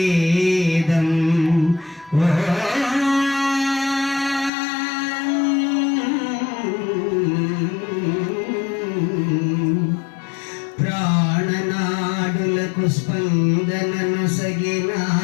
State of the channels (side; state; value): right; drops out; at 4.5 s